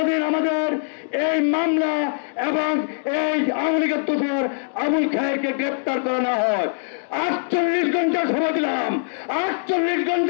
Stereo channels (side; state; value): right; silent; digital silence